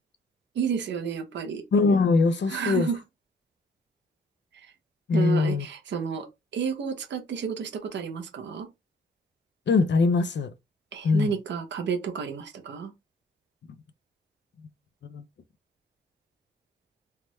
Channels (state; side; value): normal; both; correlation 0.60